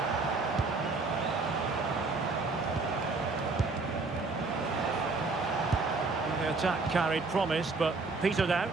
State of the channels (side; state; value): left; quieter; 3.8 dB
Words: The attack carried promise, but petered